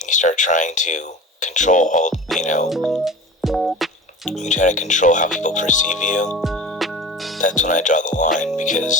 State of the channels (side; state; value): both; normal; correlation 0.35